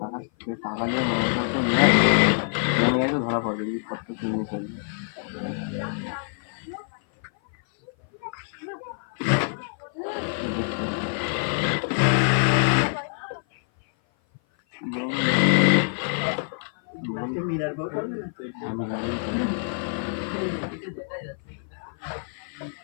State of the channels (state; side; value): silent; right; 56 dB below the other